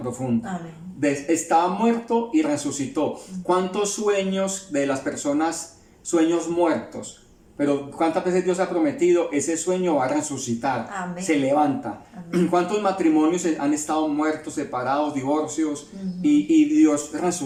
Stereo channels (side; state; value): both; identical; correlation 1.00